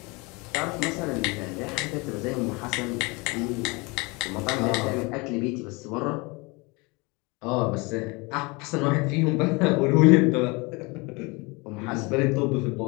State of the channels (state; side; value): quieter; right; 27.0 dB